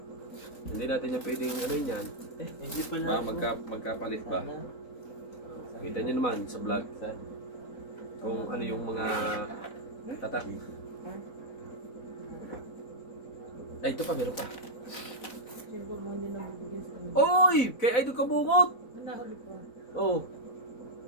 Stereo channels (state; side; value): late; right; 4.0 ms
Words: Hindi natin yung pwedeng ano yun yan. Hindi pala. Ba, magkapalit ba? Kita nyo naman sa vlog kung ano yung mga tatak. Ay, ito pa, meron pa. Siyempre mo hindi na bibigyan sa kanya. Oy! Kay Idol Kabungot! Nahuli pa. Oh,